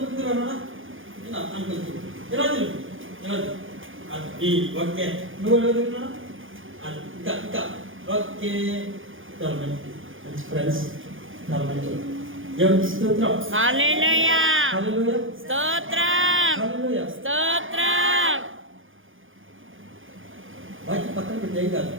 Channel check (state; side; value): late; left; 0.58 ms